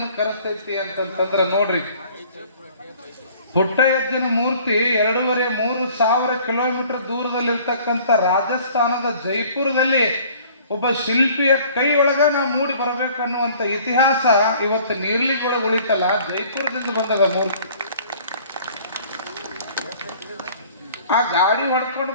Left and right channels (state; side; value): inverted; both; correlation -0.53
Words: ಕರೆಸ್ತೈತಿ ಅಂತಂತಂದ್ರ ನೋಡ್ರಿ. ಪುಟ್ಟಯ್ಯಜ್ಜನ ಮೂರ್ತಿ 2,500-3,000 ಕಿಲೋಮೀಟರ್ ದೂರದಲ್ಲಿರ್ತಕ್ಕಂಥ ರಾಜಸ್ಥಾನದ ಜೈಪುರದಲ್ಲಿ ಒಬ್ಬ ಶಿಲ್ಪಿಯ ಕೈ ಒಳಗ ನಾವು ಮೂಡಿ ಬರ್ಬೇಕನ್ನುವಂತ ಇತಿಹಾಸ ಇವತ್ತು ನೀರ್ಲಿಗೊಳಗೆ ಉಳಿತಲ್ಲ, ಜೈಪುರದಿಂದ ಬಂದದ ಮೂರ್ತಿ. ಆ ಗಾಡಿ ಹೊಡ್ಕೊಂಡು